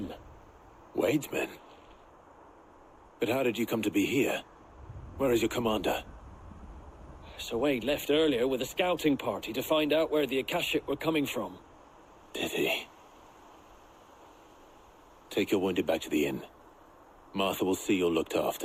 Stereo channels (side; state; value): both; identical; correlation 1.00